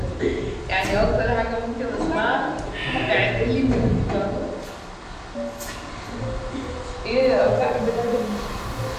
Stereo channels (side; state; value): both; identical; correlation 1.00